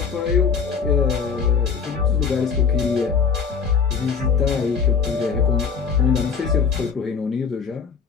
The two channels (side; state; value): right; quieter; 6.1 dB